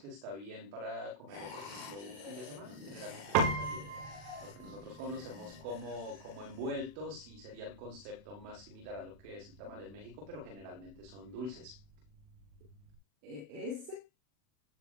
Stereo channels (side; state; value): left; late; 40 ms